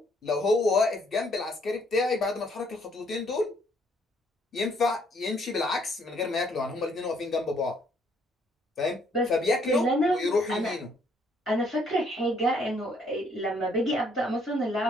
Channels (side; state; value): both; normal; correlation 0.67